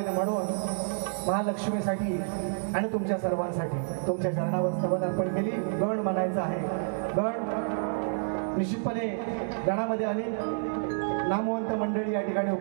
म्हणून महालक्ष्मीसाठी आणि तुमच्या सर्वांसाठी तुमच्या चरणावर स्तवन अर्पण केली. गण म्हणायचं आहे. गण निश्चितपणे गणामध्ये अनेक नामवंत मंडळी या ठिकाणी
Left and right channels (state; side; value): silent; left; digital silence